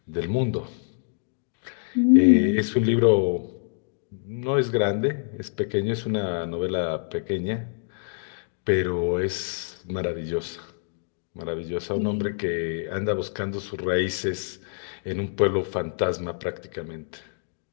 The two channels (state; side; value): silent; right; digital silence